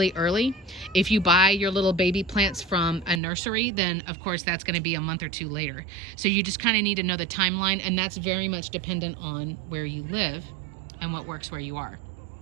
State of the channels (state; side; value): drops out; left; at 3.2 s